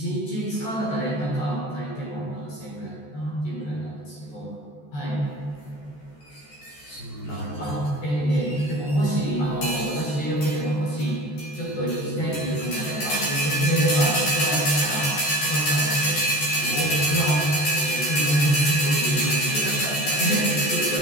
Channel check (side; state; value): right; late; 14 ms